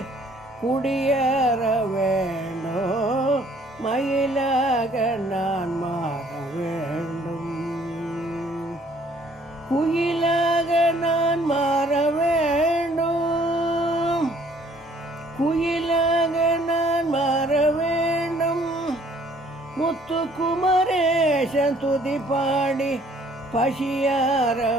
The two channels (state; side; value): normal; both; correlation 0.60